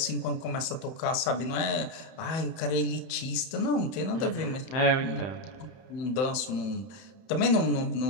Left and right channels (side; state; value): right; late; 30 ms